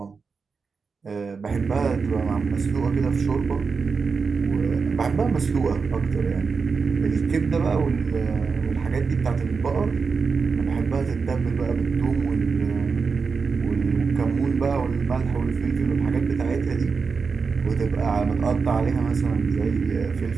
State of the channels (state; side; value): quieter; left; 5.1 dB